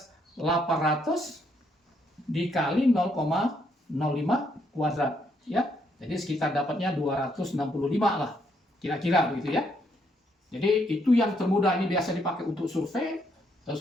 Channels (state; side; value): normal; both; correlation 0.73